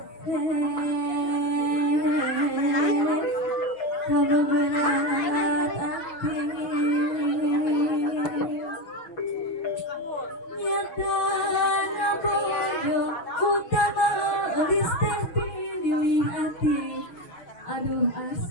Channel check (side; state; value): right; late; 6.0 ms